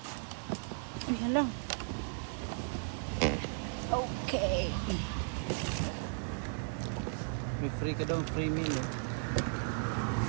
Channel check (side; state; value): left; silent; digital silence